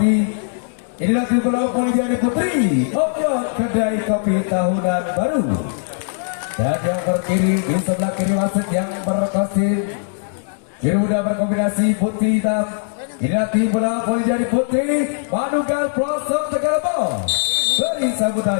Inilah tim bola Olimpiade Putri Obyok Kedai Kopi Tahunan Baru. Dan yang berdiri di sebelah kiri wasit yang berkasi biru muda berkombinasi putih hitam. Inilah tim bola Olimpiade Putri Manugal Pelosok Tegalebo. Beri sambutan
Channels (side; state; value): right; silent; digital silence